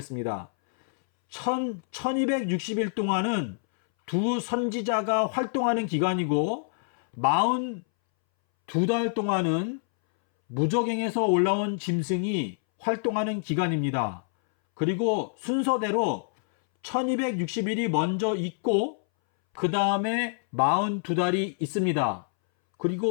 1260일 동안은 두 선지자가 활동하는 기간이고 42달 동안은 무저갱에서 올라온 짐승이 활동하는 기간입니다. 그리고 순서대로 1260일이 먼저 있고 그 다음에 42달이 있습니다.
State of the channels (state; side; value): silent; right; 60 dB below the other